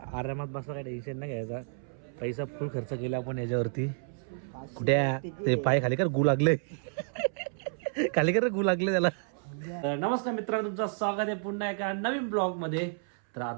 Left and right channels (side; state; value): left; silent; 57 dB below the other